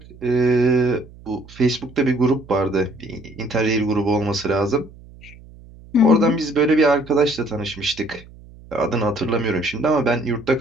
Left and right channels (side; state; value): right; noise; hum, 21 dB below the sound